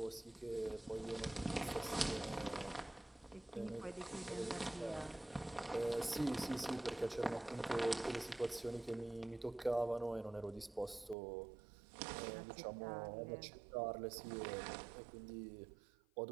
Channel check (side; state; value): left; drops out; at 11.2 s